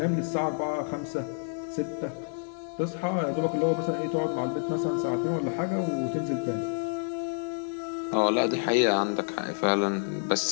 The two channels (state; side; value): silent; right; digital silence